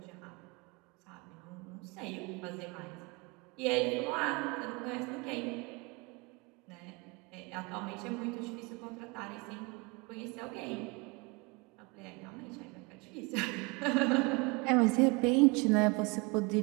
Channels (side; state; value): left; quieter; 27.9 dB